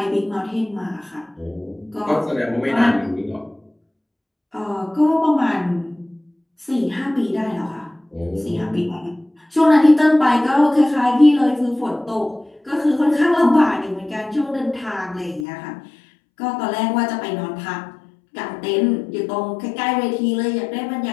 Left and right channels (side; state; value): right; drops out; at 15.5 s